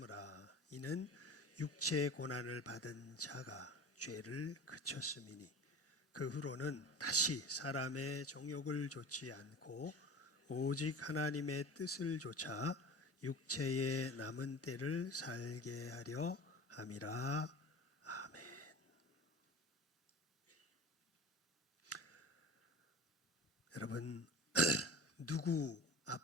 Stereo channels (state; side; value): normal; both; correlation 0.35